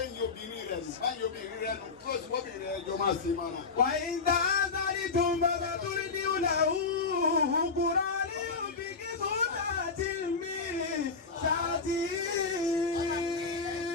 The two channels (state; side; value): quieter; right; 4.6 dB